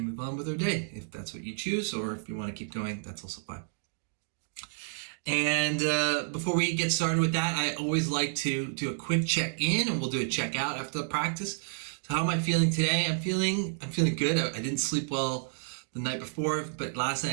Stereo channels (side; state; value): left; silent; digital silence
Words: move on with our day, if that's what you choose, or if you want to keep going, that's also fine. And before we get started with that, I always like to do a quick check-in, and we'll do a check-out after the practice. So how am I feeling today? I'm feeling good. I didn't sleep well the night before, but last night